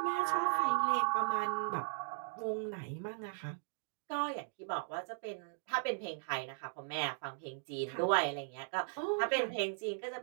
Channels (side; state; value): left; silent; digital silence